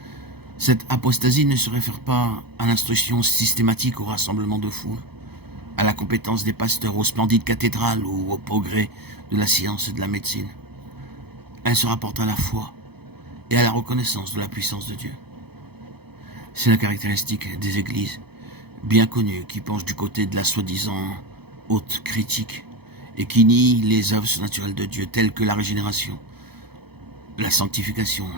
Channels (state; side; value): late; left; 0.97 ms